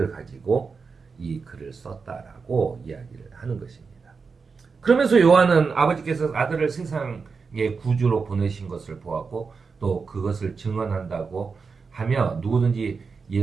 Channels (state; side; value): quieter; left; 5.0 dB